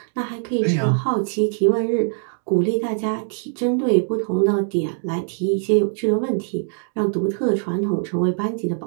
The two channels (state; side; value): silent; left; digital silence